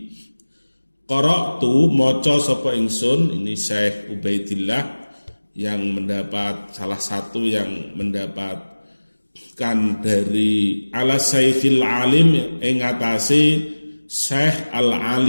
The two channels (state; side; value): inverted; both; correlation -1.00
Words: Qara'tu maca sapa ingsun, ini Syekh Ubaidillah yang mendapat salah satu yang mendapatkan dari ala Syekhil Alim ing atase Syekh